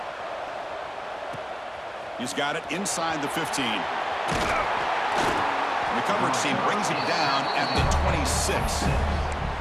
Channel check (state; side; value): identical; both; correlation 1.00